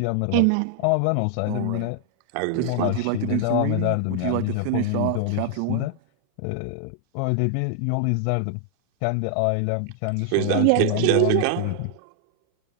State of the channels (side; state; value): both; different; correlation 0.00